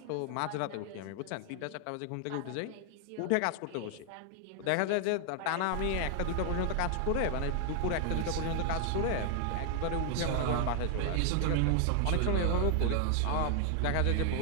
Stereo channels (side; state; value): both; different; correlation 0.00